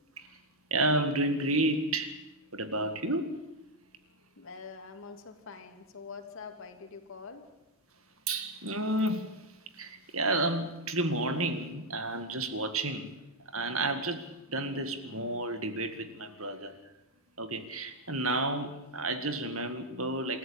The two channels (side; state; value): both; normal; correlation 0.01